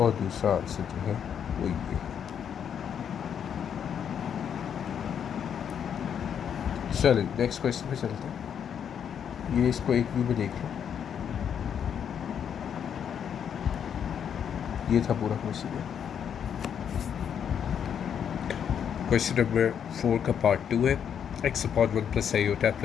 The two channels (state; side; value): quieter; right; 8.2 dB